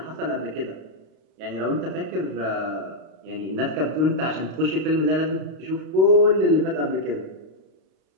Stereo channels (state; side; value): late; left; 32 ms